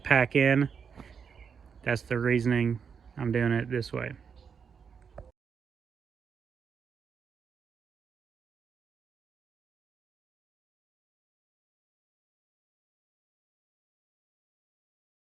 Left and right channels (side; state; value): left; quieter; 6.5 dB